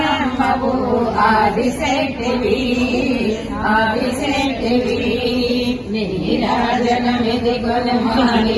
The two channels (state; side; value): identical; both; correlation 1.00